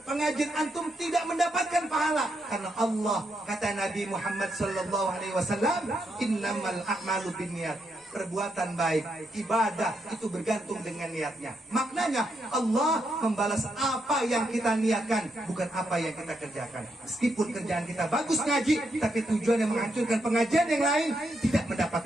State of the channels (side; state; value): both; normal; correlation 0.80